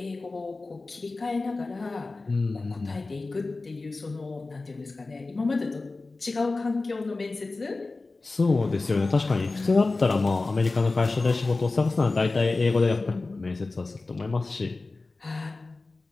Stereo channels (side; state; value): right; quieter; 3.5 dB